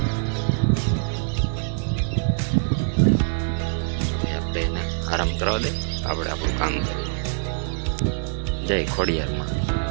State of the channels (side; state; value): left; silent; digital silence